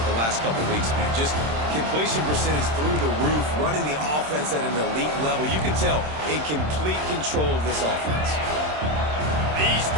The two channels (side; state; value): left; late; 26 ms